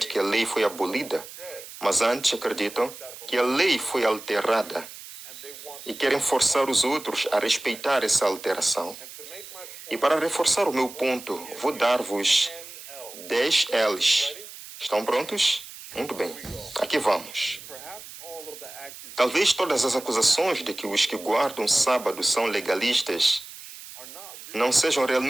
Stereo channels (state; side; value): noise; right; hiss, 15 dB below the sound